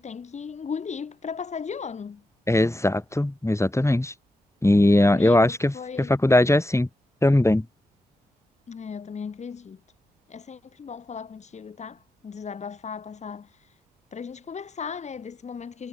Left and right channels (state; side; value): normal; both; correlation 0.88